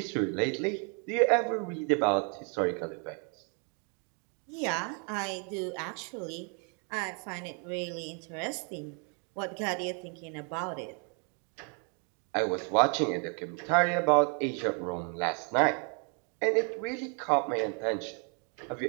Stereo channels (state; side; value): quieter; left; 38.5 dB